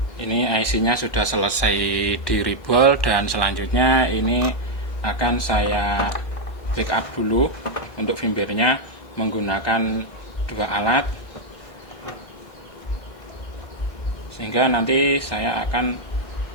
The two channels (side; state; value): right; late; 1.6 ms